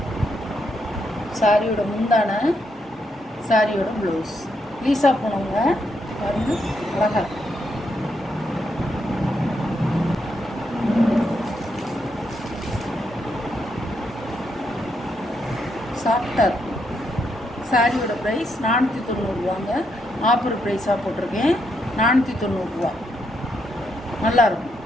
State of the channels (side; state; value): both; normal; correlation 0.79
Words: சாரியோட முந்தான, சாரியோட ப்ளவுஸ். லீசா போனவங்க பாருங்க, அழகா சாஃப்டாக இருக்கும். சாரியோட ப்ரைஸ் 490 ஆஃபர் ப்ரைஸாக போட்டிருக்கேன். 490 நல்லாயிருக்கும்.